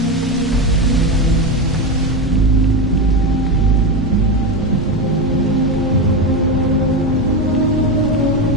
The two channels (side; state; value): both; normal; correlation 0.15